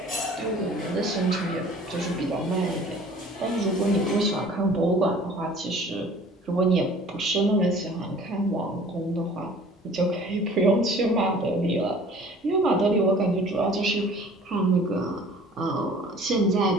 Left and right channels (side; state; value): both; normal; correlation 0.49